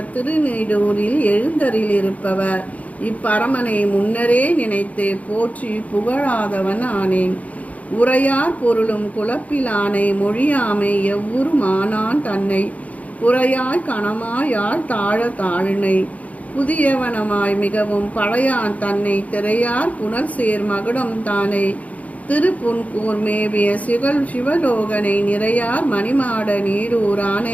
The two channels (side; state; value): right; late; 0.070 ms